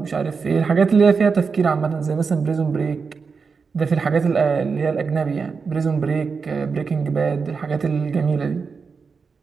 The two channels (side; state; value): left; quieter; 5.2 dB